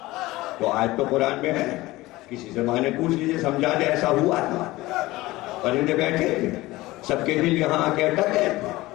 تو آج تو قرآن میں ہے، کسی سے معنی پوچھ لیجیے سمجھا دے ایسا ہوا تھا. پرندے بیٹھے تھے، سب کے دل یہاں آ کے اٹک گئے تھے،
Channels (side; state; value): right; quieter; 18.9 dB